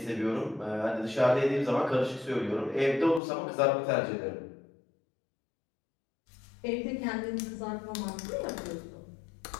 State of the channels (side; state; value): right; drops out; at 3.2 s